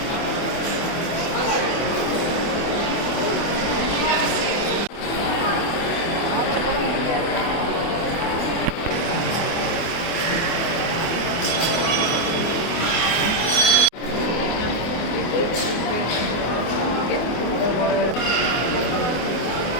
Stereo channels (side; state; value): right; late; 24 ms